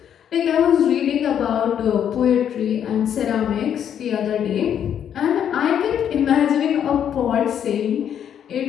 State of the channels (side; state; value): right; quieter; 9.1 dB